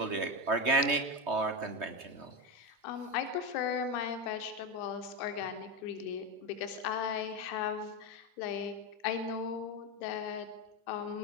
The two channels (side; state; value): left; late; 3.2 ms